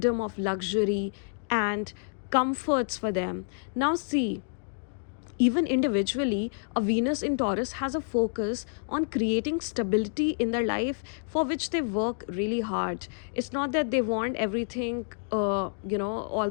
of luxury and comforts for them. Now, see, even individually, a Venus in Taurus has a focus on creating stability in their life for which they work really hard. It's not that they want everything, all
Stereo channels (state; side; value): silent; right; digital silence